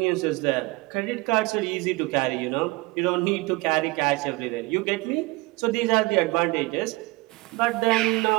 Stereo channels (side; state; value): left; quieter; 23.2 dB